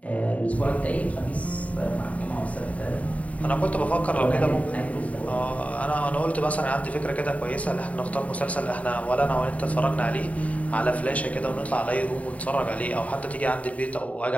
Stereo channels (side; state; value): right; late; 0.068 ms